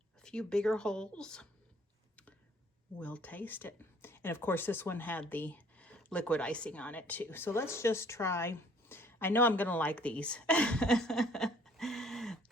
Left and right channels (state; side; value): normal; both; correlation 0.58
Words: A few bigger holes. We'll taste it. And of course this one had the liquid icing on it too. So let's just try. I know I'm gonna like these.